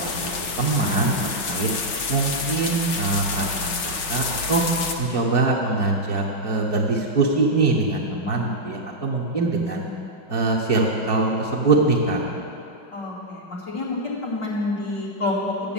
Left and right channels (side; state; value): right; late; 6.0 ms